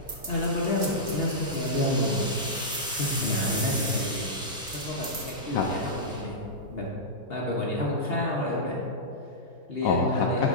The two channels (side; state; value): both; normal; correlation -0.12